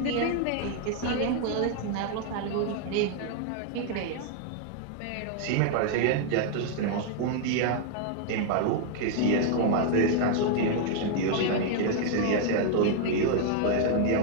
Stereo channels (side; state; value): both; different; correlation 0.00